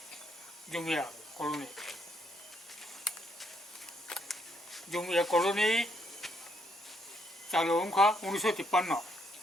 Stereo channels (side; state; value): both; normal; correlation 0.73